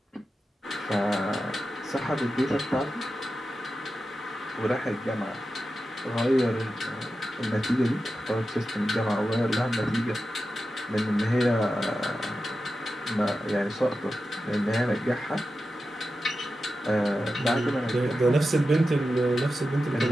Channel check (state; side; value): normal; both; correlation 0.91